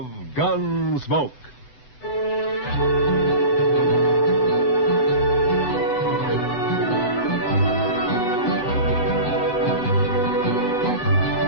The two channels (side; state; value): right; late; 8.0 ms